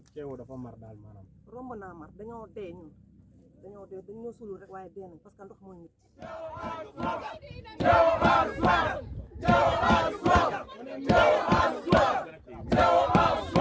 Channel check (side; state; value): both; identical; correlation 1.00